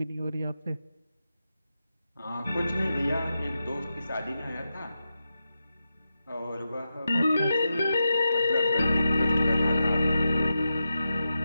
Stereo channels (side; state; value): both; inverted; correlation -0.89